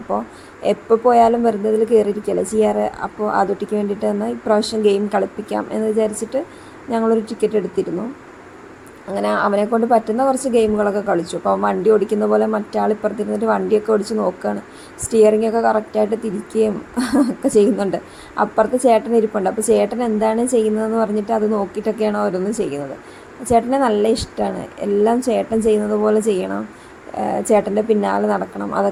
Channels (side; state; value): both; identical; correlation 1.00